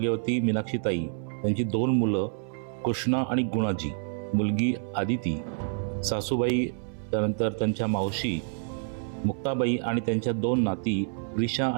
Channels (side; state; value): left; silent; 58 dB below the other